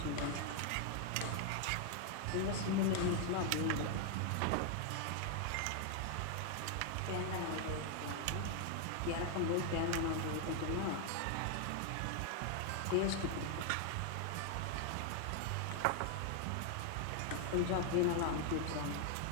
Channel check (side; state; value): both; different; correlation 0.00